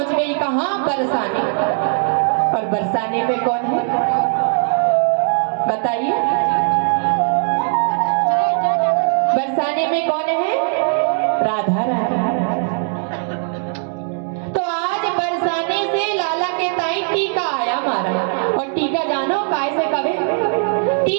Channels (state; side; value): silent; left; 60 dB below the other